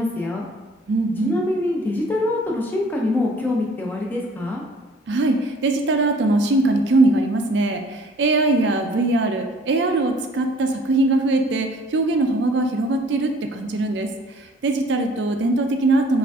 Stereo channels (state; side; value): normal; both; correlation 0.55